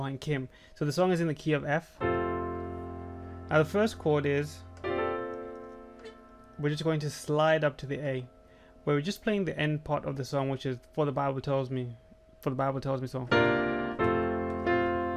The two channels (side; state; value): both; identical; correlation 1.00